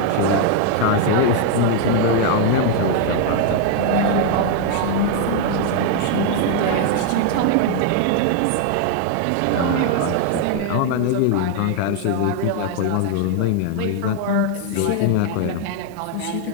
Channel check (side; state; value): both; different; correlation 0.00